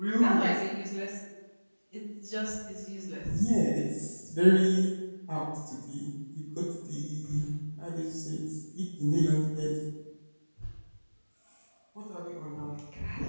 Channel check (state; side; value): inverted; both; correlation -1.00